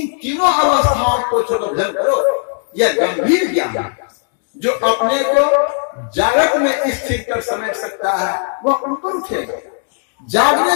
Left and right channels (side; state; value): right; silent; 67 dB below the other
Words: तीनों अवस्थाओं को छोड़कर भजन करो। यह गंभीर ज्ञान है। जो अपने को जागृत में स्थिर कर समेट सकता है वह ऊपर उठेगा।